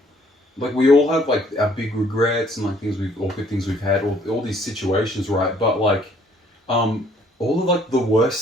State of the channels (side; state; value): both; normal; correlation 0.62